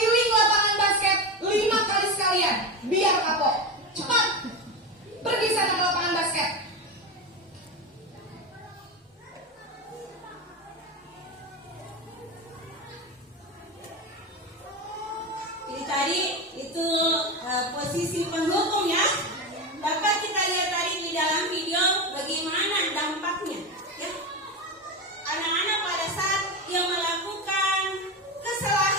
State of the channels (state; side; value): normal; both; correlation 0.19